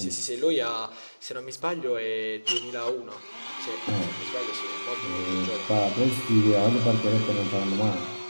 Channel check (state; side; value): inverted; both; correlation -1.00